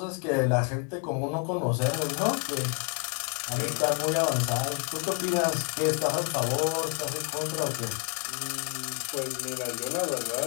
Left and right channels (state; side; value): quieter; right; 34.1 dB